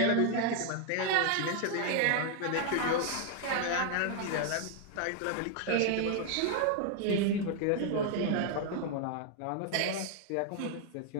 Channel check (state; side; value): different; both; correlation 0.00